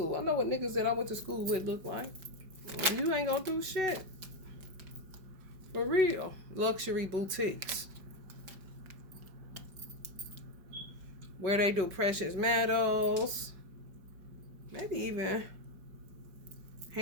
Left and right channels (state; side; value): late; left; 5.3 ms